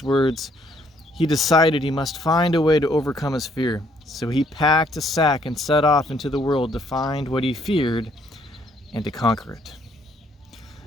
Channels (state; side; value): normal; both; correlation 0.67